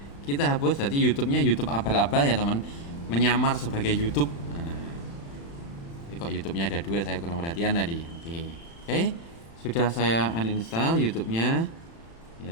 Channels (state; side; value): late; right; 35 ms